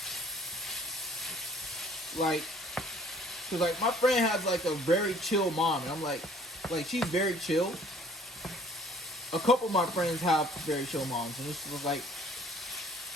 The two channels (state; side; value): normal; both; correlation 0.55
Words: like, cause like my friend has like a very chill mom, and I'm like she's very chill. A couple of my friends have very chill moms, and this was like,